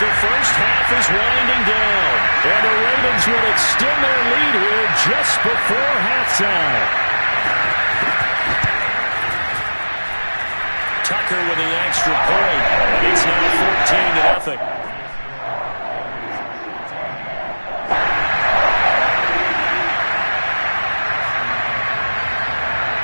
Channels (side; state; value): both; inverted; correlation -1.00